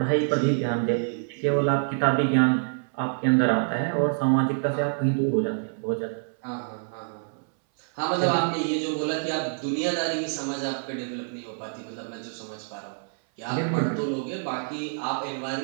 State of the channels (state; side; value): silent; left; 60 dB below the other